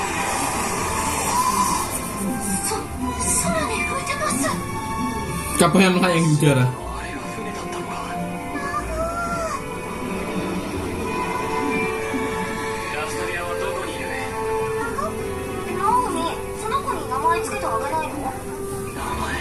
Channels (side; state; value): both; identical; correlation 1.00